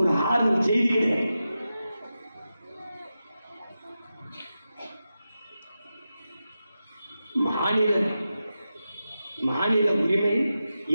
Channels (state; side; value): inverted; both; correlation -0.91